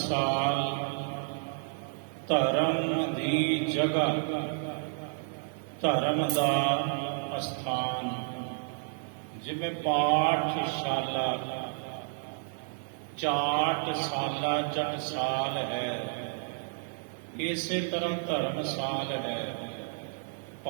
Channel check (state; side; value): silent; left; digital silence